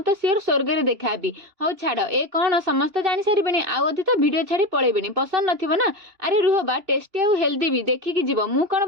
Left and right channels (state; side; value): late; left; 2.9 ms